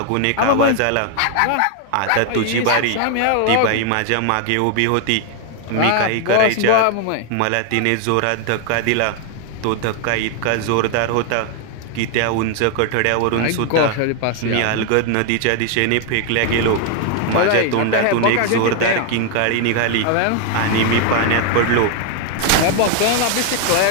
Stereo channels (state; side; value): different; both; correlation 0.00